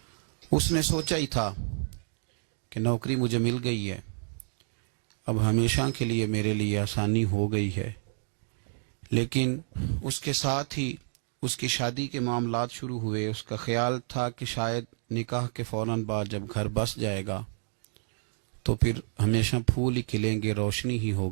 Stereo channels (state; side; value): silent; left; digital silence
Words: اس نے سوچا ہی تھا کہ نوکری مجھے مل گئی ہے، اب ہمیشہ کے لیے میرے لیے آسانی ہو گئی ہے، لیکن اس کے ساتھ ہی اس کی شادی کے معاملات شروع ہوئے۔ اس کا خیال تھا کہ شاید نکاح کے فوراً بعد جب گھر بس جائے گا تو پھر ہمیشہ پھول ہی کھلیں گے، روشنی ہی